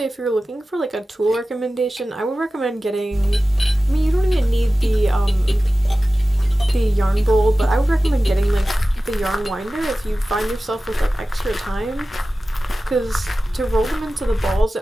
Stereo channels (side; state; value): both; normal; correlation 0.95